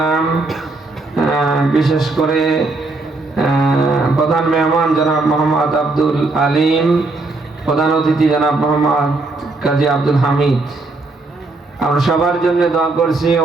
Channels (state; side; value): quieter; left; 3.4 dB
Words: বিশেষ করে প্রধান মেহমান জনাব মোহাম্মদ আব্দুল আলিম, প্রধান অতিথি জনাব মোহাম্মদ কাজী আব্দুল হামিদ, আমরা সবার জন্য দোয়া করছি।